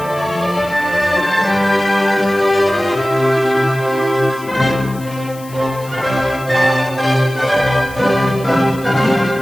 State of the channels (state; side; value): noise; left; hiss, 20 dB below the sound